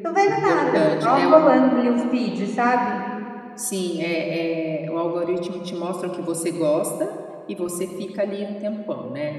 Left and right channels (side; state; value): both; identical; correlation 1.00